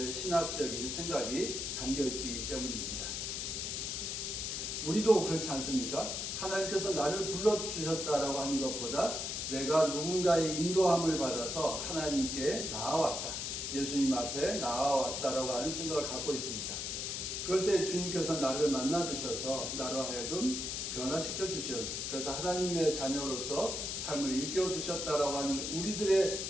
신학적인 생각이 담겨 있기 때문입니다. 우리도 그렇지 않습니까? 하나님께서 나를 불러주셨다라고 하는 것보다 내가 누군가의 인도함을 받아서 하나님께 나아왔다, 예수님 앞에 나아왔다라고 하는 생각을 갖고 있습니다. 그럴 때 주님께서 나를 만나주셔서 나로 하여금 변화시켜 주셔, 그래서 하나님의 자녀로서 삶을 일깨워 주셨다라고 하는 우리들의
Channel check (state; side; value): noise; left; hiss, 3 dB below the sound